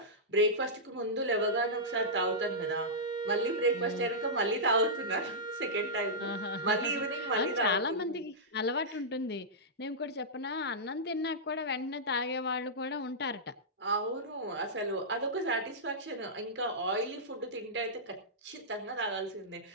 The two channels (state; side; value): normal; both; correlation -0.12